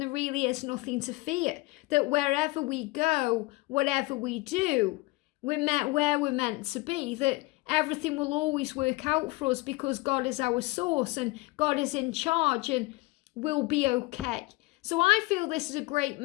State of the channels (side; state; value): right; quieter; 22.5 dB